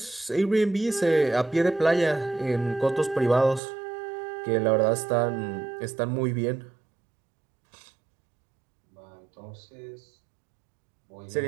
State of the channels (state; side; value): drops out; left; at 3.6 s